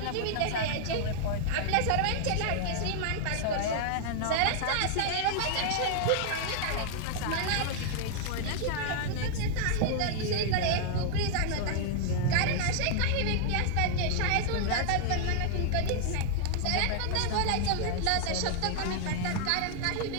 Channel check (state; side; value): different; both; correlation -0.01